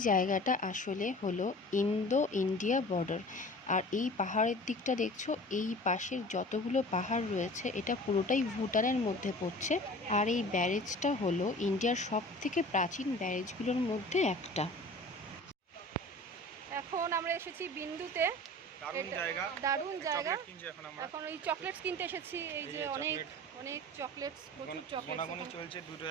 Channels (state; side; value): normal; both; correlation 0.41